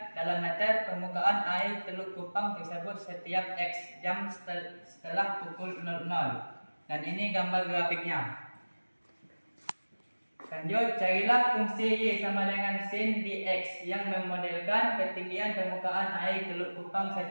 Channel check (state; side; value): inverted; both; correlation -1.00